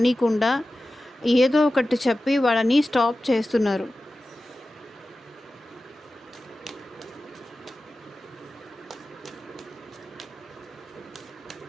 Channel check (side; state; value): both; normal; correlation 0.95